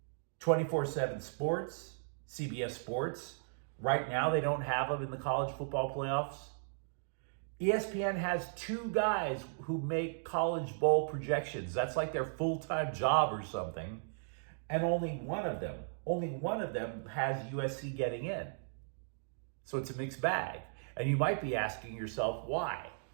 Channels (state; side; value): silent; left; digital silence